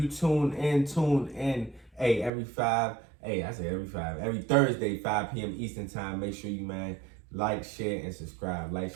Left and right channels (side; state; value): left; drops out; at 2.3 s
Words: tune in. Hey, every Thursday, 5 p.m. Eastern time. Make sure you, man, like, share, and subscribe.